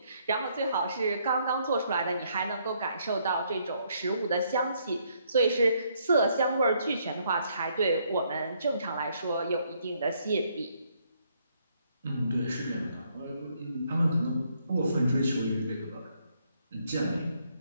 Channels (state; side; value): inverted; both; correlation -0.70